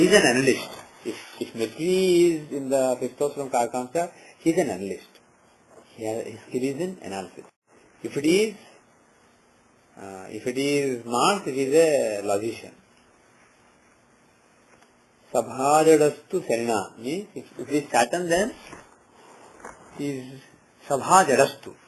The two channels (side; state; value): both; identical; correlation 1.00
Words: an analyst. If Mercury is in the fifth house from Karkamsa, he's an analyst. His skill is in analysis. If it is Mars, it is a logician. Sabhajadastu Serena means if it is Saturn, then is Sabhajadastu.